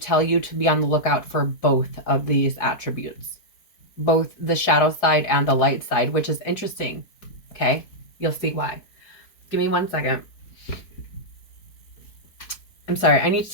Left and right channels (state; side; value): late; right; 4.5 ms